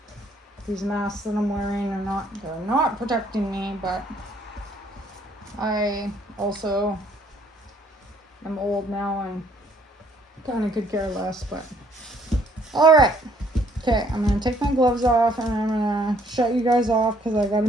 these masks that I'm wearing they're not protecting me, but I also am old now and kind of could care less, but all right. Okay, I'm gonna take my gloves off and I'm gonna shut you guys off because I gotta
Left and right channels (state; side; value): normal; both; correlation 0.64